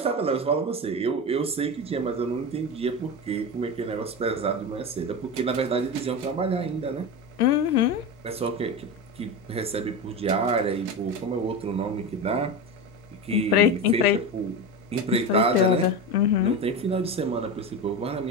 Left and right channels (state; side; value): normal; both; correlation 0.22